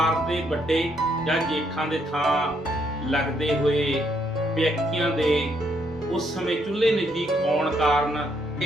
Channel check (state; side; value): normal; both; correlation 0.73